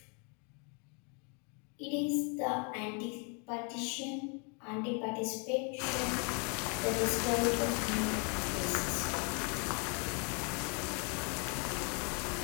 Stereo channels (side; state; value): right; quieter; 36.4 dB